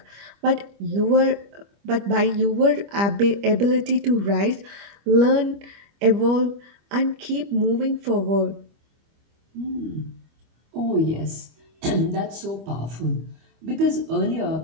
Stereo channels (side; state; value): left; late; 25 ms